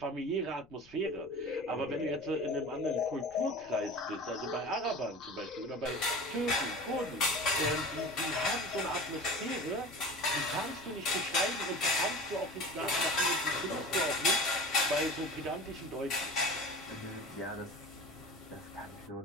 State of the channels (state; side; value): noise; left; rumble, 26 dB below the sound